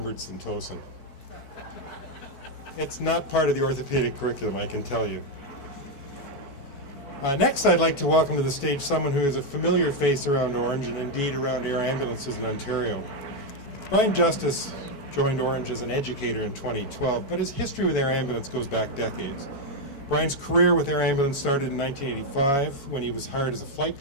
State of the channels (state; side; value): late; right; 4.6 ms